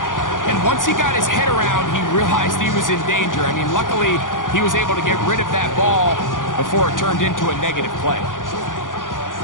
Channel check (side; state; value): right; late; 0.89 ms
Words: And once he got his head around, he realized he was in danger. I mean, luckily, he was able to get rid of that ball before it turned into a negative play.